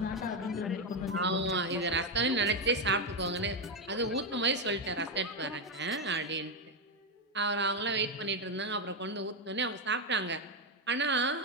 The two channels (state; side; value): normal; both; correlation 0.06